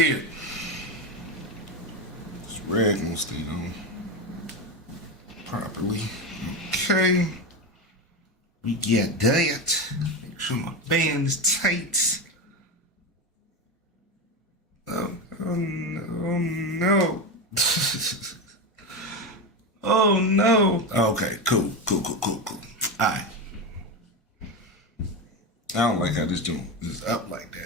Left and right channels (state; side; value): normal; both; correlation 0.16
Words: This rag won't stay on properly. Okay. We get that. Make sure my band is tight. Oh no. Oh no. Okay, cool. Alright. I don't like how this joint is up like